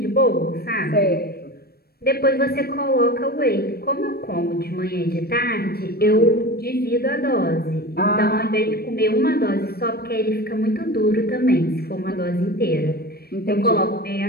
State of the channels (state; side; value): late; right; 0.45 ms